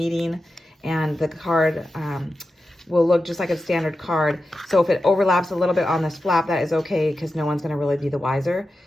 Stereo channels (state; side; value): normal; both; correlation 0.91